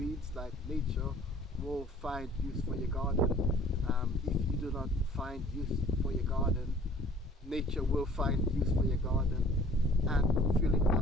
Like nature will find use for your garden. If you do not find use for your garden, nature will find use for your garden and fill it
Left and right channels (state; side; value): normal; both; correlation 0.52